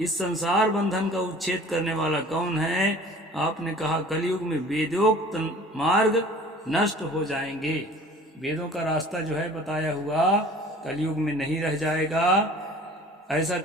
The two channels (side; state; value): both; normal; correlation 0.46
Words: संसार बंधन का उच्छेद करने वाला कौन है? आपने कहा कलयुग में वेदोक्त मार्ग नष्ट हो जाएंगे। वेदों का रास्ता जो है बताया हुआ कलयुग में नहीं रह जाएगा। ऐसा